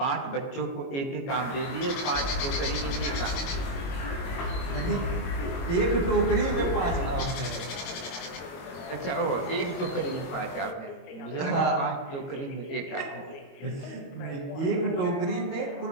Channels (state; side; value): late; right; 22 ms